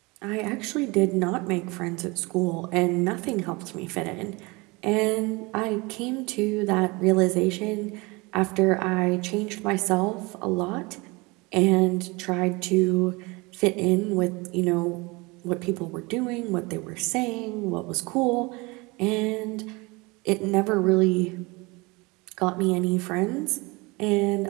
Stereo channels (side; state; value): left; quieter; 25.5 dB